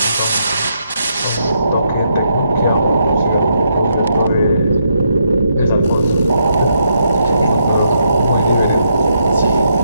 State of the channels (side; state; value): both; inverted; correlation -0.78